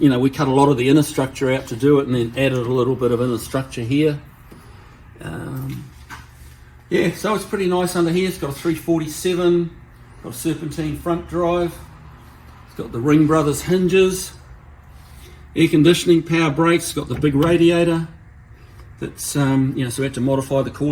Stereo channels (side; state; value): both; identical; correlation 1.00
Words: we cut a lot of the inner structure out to do it, and then added a little bit of inner structure here. Yeah, so it's pretty nice under here. It's got a 347, got a serpentine front drive. It's got the Ring Brothers hinges, air conditioning, power brakes. It's got the big radiator. That's so we had to modify the core